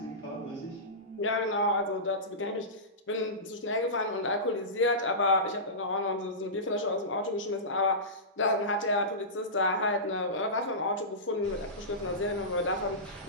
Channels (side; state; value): both; normal; correlation -0.19